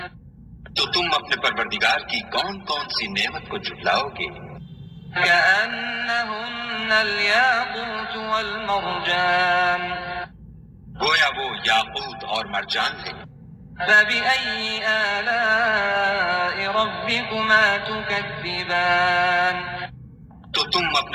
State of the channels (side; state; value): both; identical; correlation 1.00